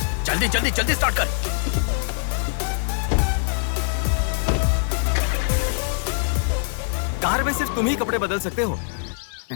जल्दी जल्दी जल्दी स्टार्ट कर। कार में सिर्फ तुम ही कपड़े बदल सकते हो।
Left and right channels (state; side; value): silent; right; digital silence